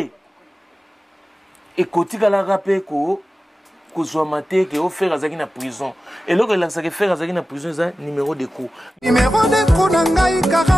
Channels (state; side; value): normal; both; correlation 0.95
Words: et côté la rappel ko soit maté que au faire azaki na prison et là que ça que faire azaki na prison ça numéro de coup nangai